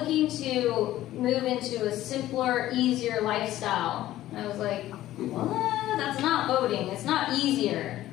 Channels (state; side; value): quieter; right; 14.4 dB